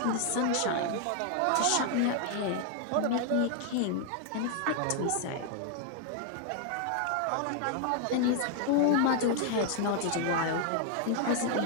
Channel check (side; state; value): both; different; correlation 0.00